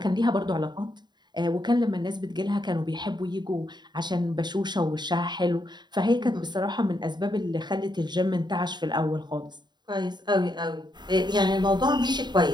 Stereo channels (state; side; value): late; left; 0.21 ms